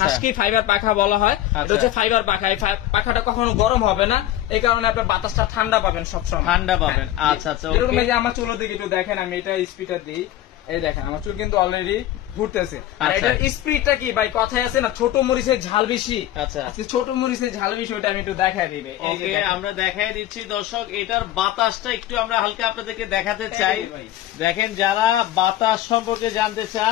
ফাইবার পাখা বলা হয়। এটা হচ্ছে ফাইবার পাখা। এই পাখাটা কখনো গরম হবে না, এই কারণে আপনি বাতাসটা ঠান্ডা পাবেন, সবসময় ঠান্ডা পাবেন। আচ্ছা আচ্ছা, এরকম এই যে আমার চুলের দিকে একটু দেখেন, আমি এটা স্পিডার দিই, এই দেখেন আমার চুল কিন্তু অলরেডি ঘুরতেছে। আর এটার স্পিডটা কি ভাই, কথায় আছে না, ছোট মরিচের ঝাল বেশি। আচ্ছা, ছোট মরিচের ঝাল বেশি, ওটা আমি একটু দেখাই দিই। আমরা দেখাই দিচ্ছি দর্শক, এটার বাতাসটা একটু আমরা হালকা আপনাদেরকে দেখাতে চাই। দেখেন, যারা বাতাস সম্পর্কে জানতে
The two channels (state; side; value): quieter; right; 13.4 dB